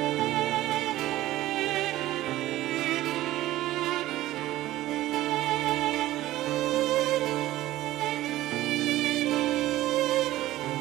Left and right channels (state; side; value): quieter; left; 15.6 dB